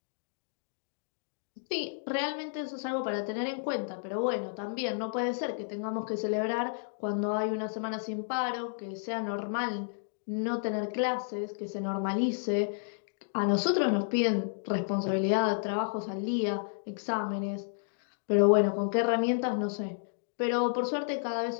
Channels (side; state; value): right; silent; digital silence